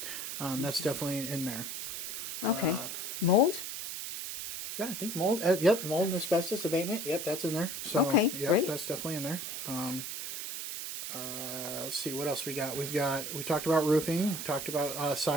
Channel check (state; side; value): noise; right; hiss, 5 dB below the sound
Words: So, that's definitely in there. Okay. Mold? Yeah, I think mold. Mold and asbestos abatement. Yep, that's in there. So, Okay, yep, great. That's definitely in there. Let's see what else we got. We talked about roofing. Talked about